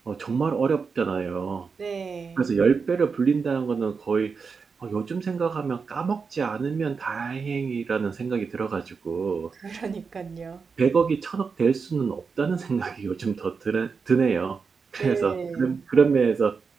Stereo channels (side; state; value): left; quieter; 5.3 dB